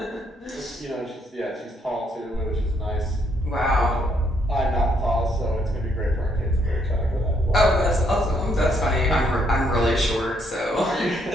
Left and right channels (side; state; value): both; normal; correlation 0.72